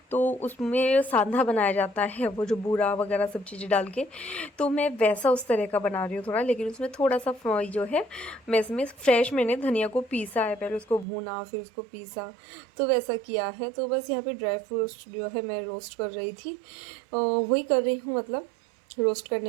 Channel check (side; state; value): left; drops out; at 11.1 s